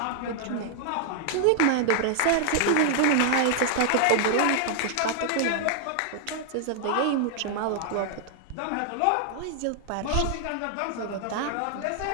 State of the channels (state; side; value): different; both; correlation -0.01